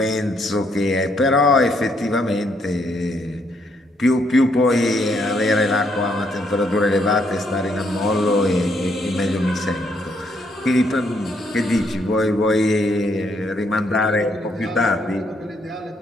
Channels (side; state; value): both; normal; correlation 0.72